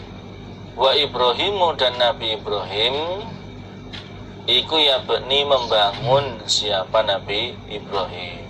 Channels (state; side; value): identical; both; correlation 1.00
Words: wa Ibrahimu, dan Nabi Ibrahim, iku yabni, membangun siapa Nabi Ibrahim.